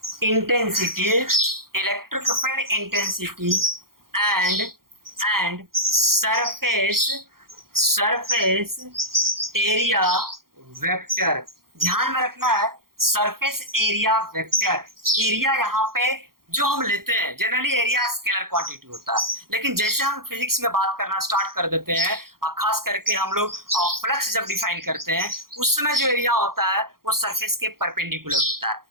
and surface area vector. ध्यान में रखना है, सरफेस एरिया वेक्टर। एरिया यहाँ पे जो हम लेते हैं, जनरली एरिया स्केलर क्वांटिटी होता है, लेकिन जैसे हम फिजिक्स में बात करना स्टार्ट कर देते हैं, और खास करके हम लोग फ्लक्स जब डिफाइन करते हैं, उस समय जो एरिया होता है वो सरफेस के परपेंडिकुलर होता है।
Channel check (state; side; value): late; left; 0.92 ms